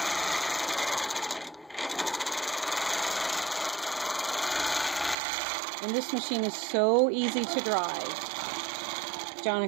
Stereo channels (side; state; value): left; drops out; at 5.2 s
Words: And this machine is so easy to drive. John,